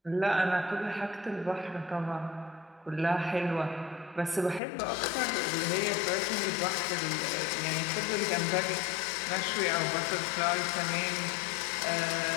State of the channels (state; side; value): drops out; right; at 4.6 s